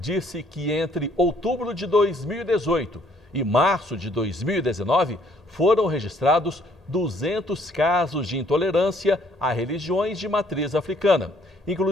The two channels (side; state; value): both; normal; correlation 0.63